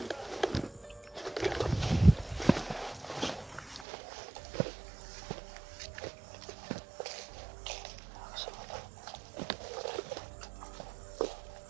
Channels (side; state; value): left; drops out; at 3.9 s